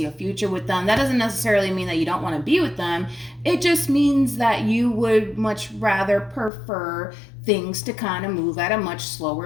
a future with them. That doesn't necessarily mean that you don't want to be with them. It just means that you would much rather prefer things to kind of move at a much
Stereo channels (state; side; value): drops out; right; at 6.5 s